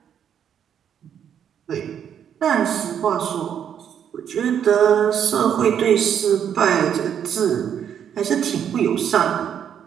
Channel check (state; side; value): quieter; left; 8.8 dB